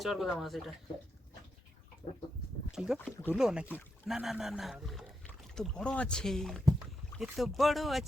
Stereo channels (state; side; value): normal; both; correlation 0.84